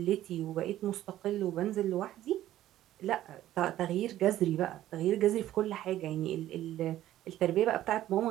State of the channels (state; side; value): quieter; left; 13.4 dB